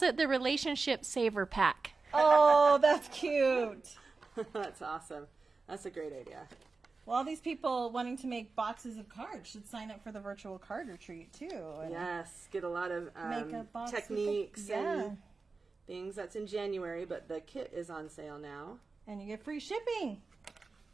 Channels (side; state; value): left; quieter; 4.1 dB